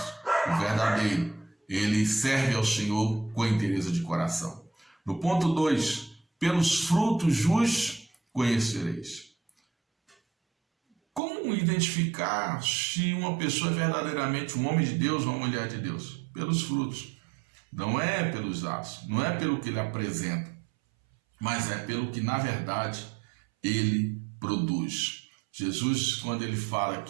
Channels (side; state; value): left; drops out; at 11.2 s